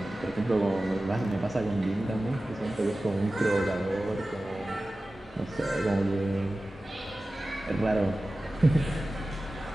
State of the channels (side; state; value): both; normal; correlation 0.96